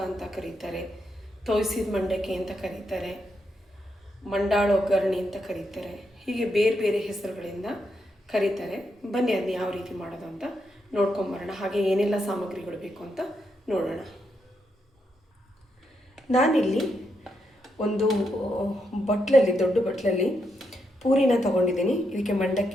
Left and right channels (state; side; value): normal; both; correlation 0.81